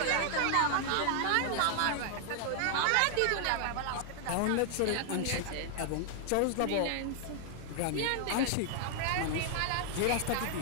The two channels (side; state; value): both; different; correlation 0.00